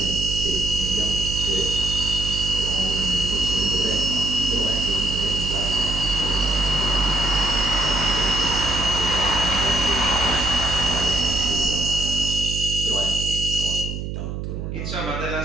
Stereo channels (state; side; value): noise; right; hum, 5 dB below the sound